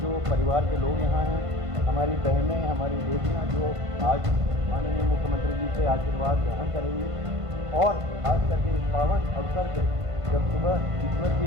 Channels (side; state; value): left; late; 1.5 ms